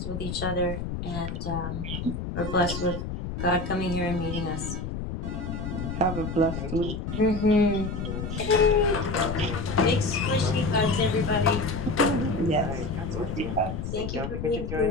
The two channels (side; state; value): left; noise; rumble, 5 dB below the sound